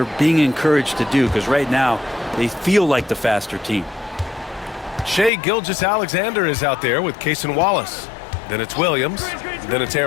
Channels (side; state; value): right; drops out; at 5.3 s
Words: being encouraged to do, because right now they feel like the faster team. Shea Gilgeous-Alexander is out there with Cason Wallace. Then it's Williams. Then it's